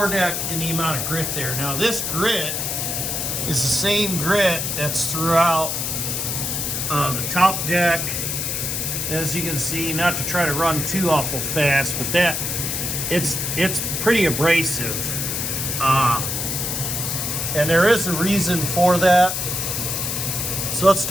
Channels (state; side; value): noise; left; hiss, 1 dB below the sound